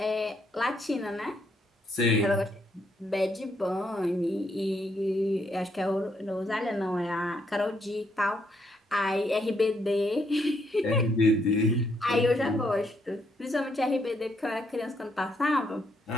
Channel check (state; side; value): normal; both; correlation 0.75